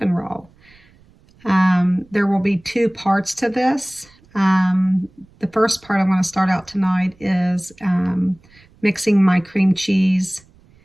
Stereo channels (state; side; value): noise; right; rumble, 29 dB below the sound